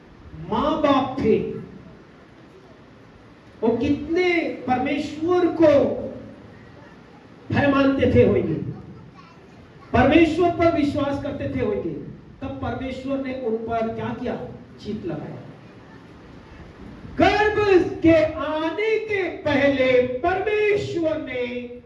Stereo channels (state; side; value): identical; both; correlation 1.00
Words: मां बाप थे वो कितने परमेश्वर को भय मानते थे होंगे, परमेश्वर पर विश्वास करते थे होंगे, तब परमेश्वर ने उन पर क्या किया? चित लगाया। गर्भ के आने के पहले परमेश्वर ने